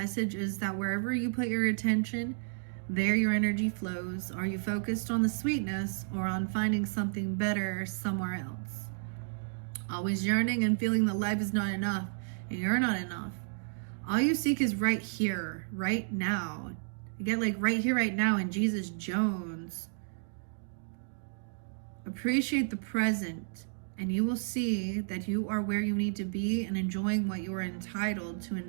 is that wherever you put your attention, there your energy flows. Are you focused on the sweetness or on finding something better somewhere else? Always yearning and feeling that life is not enough and you're not enough. All you seek is right here, right now. You get like right here, right now in Jesus Jones. Appreciate the present and you will see that you are where you need to be and enjoying what you are entitled to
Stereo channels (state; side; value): silent; left; digital silence